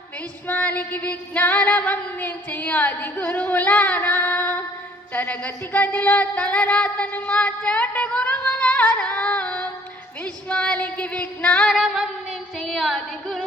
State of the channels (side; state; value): both; normal; correlation 0.58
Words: విశ్వానికి విజ్ఞానం అందించి ఆది గురువులారా, తరగతి గదిలో తలరాతను మార్చేటి గురువులారా, విశ్వానికి విజ్ఞానం అందించి ఆది